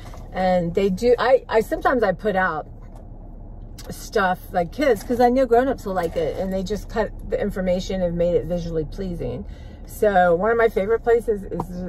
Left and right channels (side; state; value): both; identical; correlation 1.00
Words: And they do, sometimes I put out stuff like kids, because I know grown-ups will like it, and they just cut the information and made it visually pleasing. So one of my favorite places is